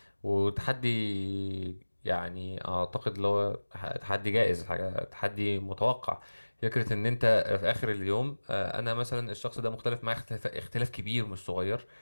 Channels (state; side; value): inverted; both; correlation -1.00